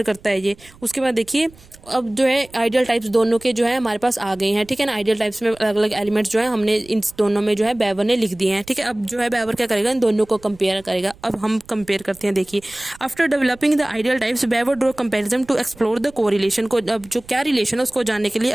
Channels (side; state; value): right; noise; rumble, 25 dB below the sound